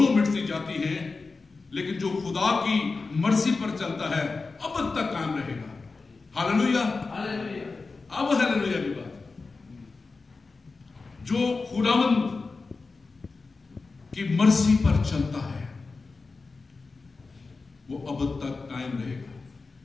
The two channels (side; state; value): right; quieter; 4.1 dB